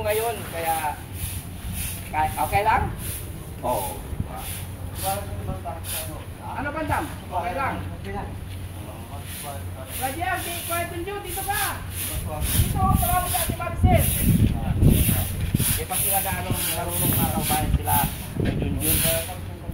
ngayon, kaya okay lang? Oo. Ano bandam? Okay lang. Rajian, kahit tunjuk, dito ka. Dito, parang sa si Marcel. Eh, pag sila gaano marunong makakabayan sila ng Junjun,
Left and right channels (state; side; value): identical; both; correlation 1.00